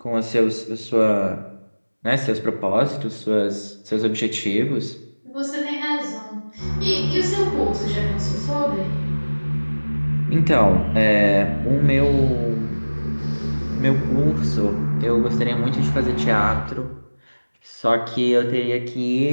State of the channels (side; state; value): both; inverted; correlation -1.00